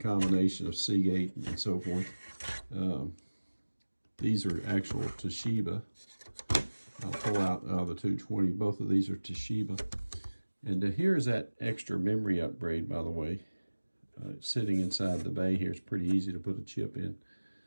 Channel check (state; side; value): inverted; both; correlation -1.00